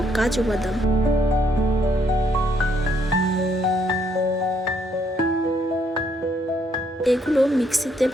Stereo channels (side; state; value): both; normal; correlation 0.70